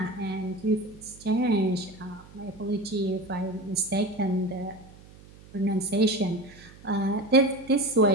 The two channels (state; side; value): noise; right; hum, 22 dB below the sound